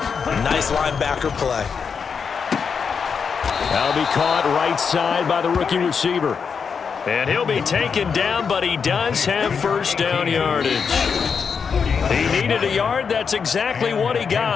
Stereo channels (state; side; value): quieter; right; 6.1 dB